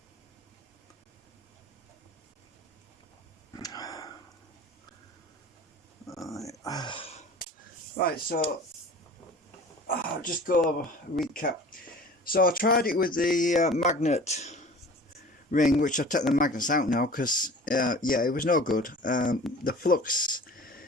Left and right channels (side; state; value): both; normal; correlation 0.42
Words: Right, so I'll just go over a recap. So I tried it with the magnet ring, which I've taken the magnets out now because yeah, it was no good. The flux